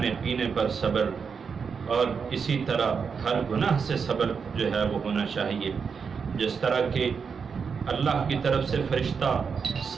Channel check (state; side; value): quieter; left; 6.0 dB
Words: پینے پر صبر، اور اسی طرح ہر گناہ سے صبر جو ہے وہ ہونا چاہیے، جس طرح کہ اللہ کی طرف سے فرشتہ